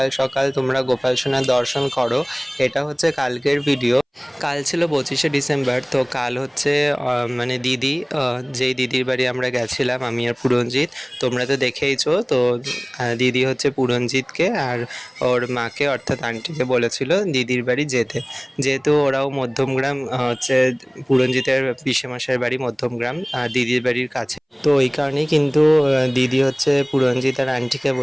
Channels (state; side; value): identical; both; correlation 1.00